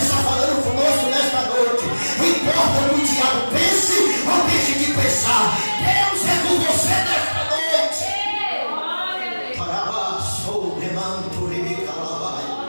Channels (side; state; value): both; inverted; correlation -1.00